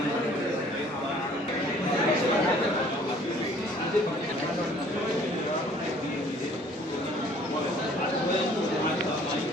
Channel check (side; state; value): both; normal; correlation 0.56